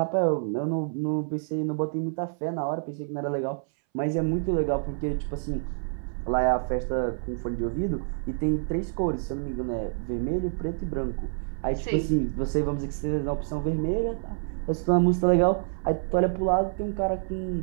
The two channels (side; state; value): left; silent; 60 dB below the other